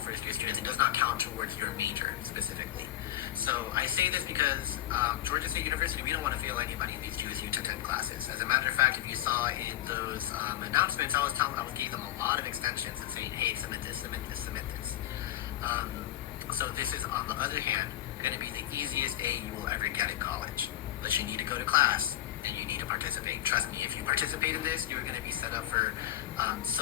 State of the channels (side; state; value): right; quieter; 13.8 dB